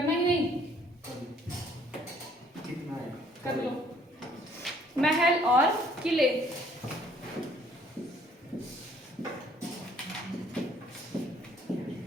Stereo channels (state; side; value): normal; both; correlation 0.61